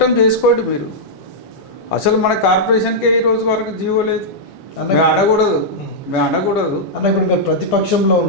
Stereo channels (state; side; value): late; right; 10 ms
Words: చేసుకోండి మీరు. అసలు మన కార్పొరేషన్కే ఈ రోజు వరకు జీవో లేదు. మేము అనకూడదు అన్న. ఇప్పుడు మీరు ప్రతిపక్షంలో